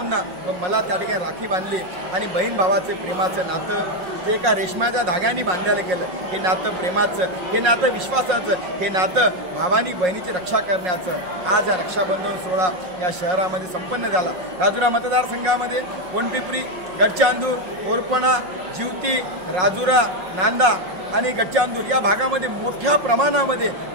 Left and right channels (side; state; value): left; late; 5.5 ms